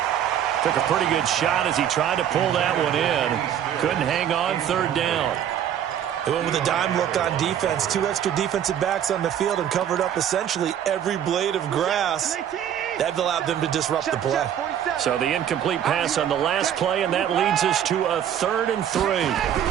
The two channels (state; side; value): quieter; left; 9.8 dB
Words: Took a pretty good shot as he tried to pull that one in. Couldn't hang on, 3rd down. They went with a dime look on defense. 2 extra defensive backs on the field and covered up essentially every blade of grass. That allowed them to disrupt the play. So the incomplete pass on the last play, and that leads us to a 3rd and 3.